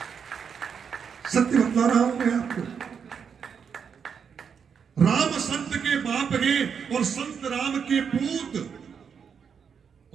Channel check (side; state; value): left; quieter; 6.8 dB